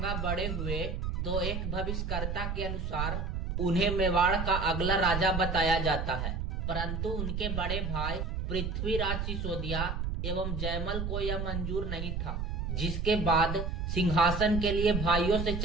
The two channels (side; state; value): right; noise; rumble, 2 dB below the sound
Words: बड़े हुए तो एक भविष्यकर्ता के अनुसार उन्हें मेवाड़ का अगला राजा बताया जाता है, परंतु उनके बड़े भाई पृथ्वीराज सिसोदिया एवं जयमल को यह मंजूर नहीं था, जिसके बाद सिंहासन के लिए भाइयों से